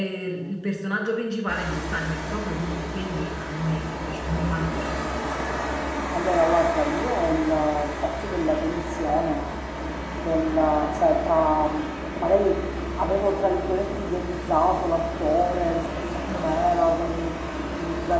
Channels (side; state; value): both; identical; correlation 1.00